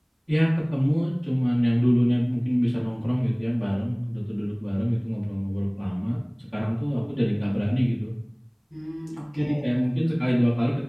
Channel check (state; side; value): identical; both; correlation 1.00